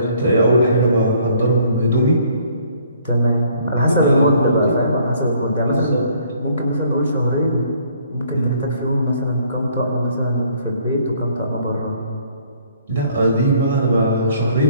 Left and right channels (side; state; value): both; inverted; correlation -0.62